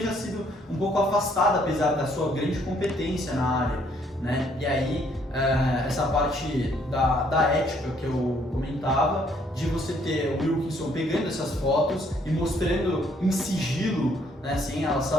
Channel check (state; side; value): normal; both; correlation 0.66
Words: sido um pouco afastada, apesar da sua grande competência na área, né? E aí, essa parte da ética que eu comentava, de você ter o Wilkinson pegando essas fotos e mostrando em sigilo, né, sem ela